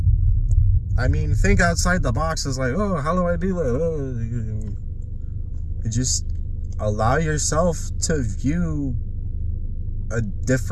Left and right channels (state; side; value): identical; both; correlation 1.00